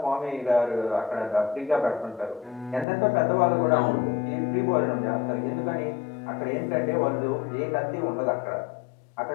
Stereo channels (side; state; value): right; drops out; at 2.9 s